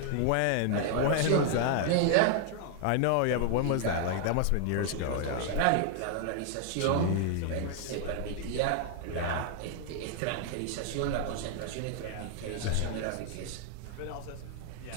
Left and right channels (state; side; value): different; both; correlation 0.00